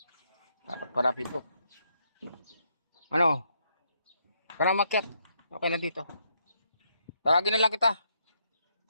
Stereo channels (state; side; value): inverted; both; correlation -0.76